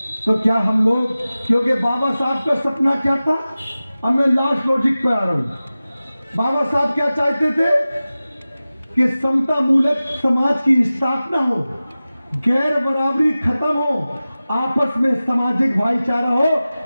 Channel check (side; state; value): both; inverted; correlation -0.96